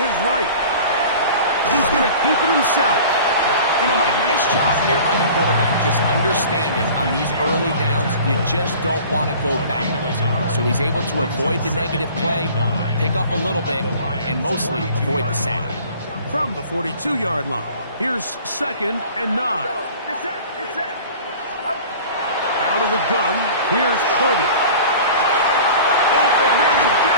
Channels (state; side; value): inverted; both; correlation -0.43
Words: right. He's going to keep it himself. You know, Mike, nice job here by the quarterback, just understanding on these early downs, you just don't want to go backwards. So he's able to avoid the negative play, pick up a little bit, and mostly avoid the sack. From the 42-yard line, here's second and 9. Out of the gun, here's Purdy. Open man